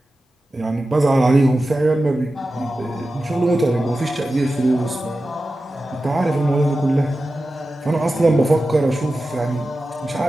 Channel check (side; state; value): both; normal; correlation 0.93